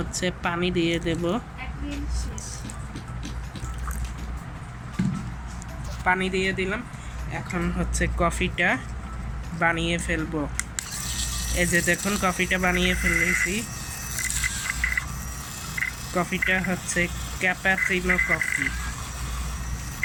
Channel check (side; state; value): both; identical; correlation 1.00